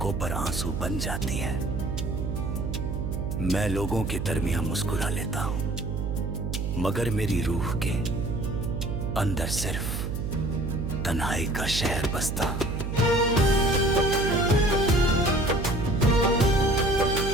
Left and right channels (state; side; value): noise; right; hum, 3 dB below the sound